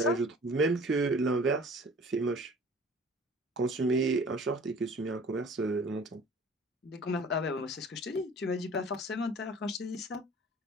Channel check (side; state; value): both; normal; correlation 0.47